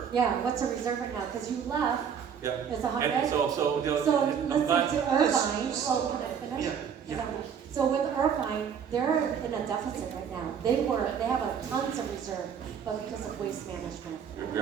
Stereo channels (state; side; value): quieter; left; 7.6 dB